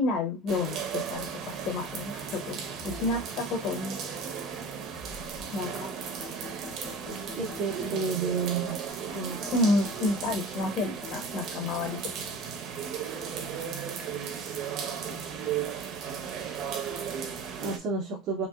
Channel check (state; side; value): normal; both; correlation 0.36